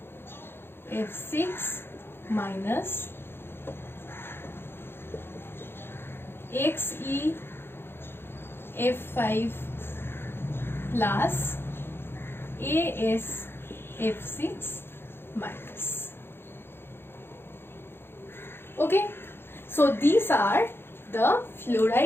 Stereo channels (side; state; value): right; late; 0.11 ms